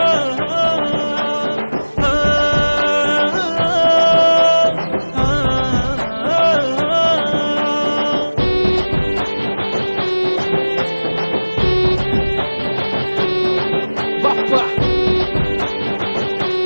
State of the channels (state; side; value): inverted; both; correlation -1.00